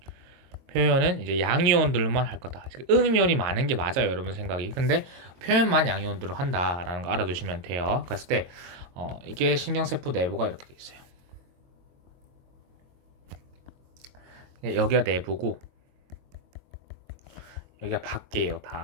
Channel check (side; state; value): left; late; 22 ms